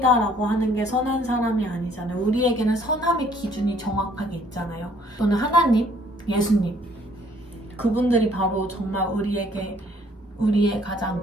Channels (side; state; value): both; normal; correlation 0.61